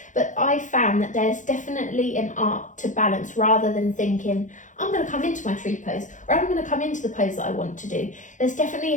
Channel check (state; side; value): late; right; 0.36 ms